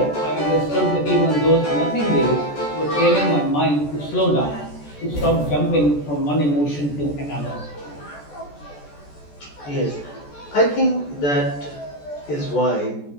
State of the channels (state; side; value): late; right; 14 ms